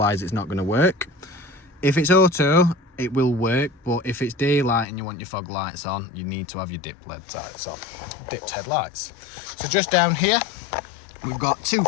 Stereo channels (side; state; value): right; drops out; at 4.9 s